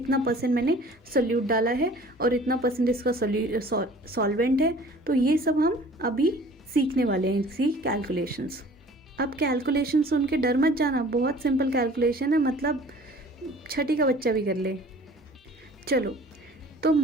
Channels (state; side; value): normal; both; correlation 0.49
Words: परसेंट मैंने सोल्यूट डाला है और इतना परसेंट इसका सॉल्वेंट है। तो ये सब हम अभी सीखने वाले हैं, इसी कैलकुलेशंस। अब कैलकुलेशन सुन के डर मत जाना, बहुत सिंपल कैलकुलेशन है, मतलब छठी का बच्चा भी कर ले। चलो, तो